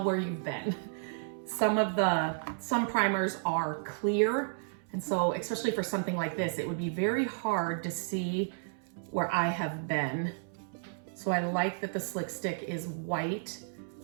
where you've been. Some primers are clear, and so especially for something like this, it would be very hard to see where I have been. So I like that the Slick Stick is white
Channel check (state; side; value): silent; left; 56 dB below the other